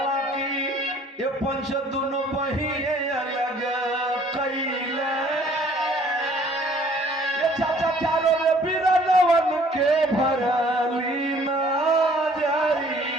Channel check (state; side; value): normal; both; correlation 0.56